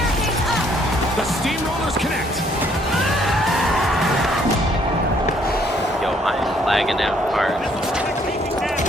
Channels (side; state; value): both; normal; correlation 0.66